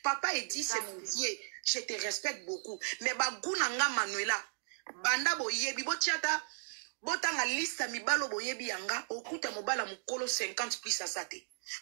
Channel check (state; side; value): silent; left; digital silence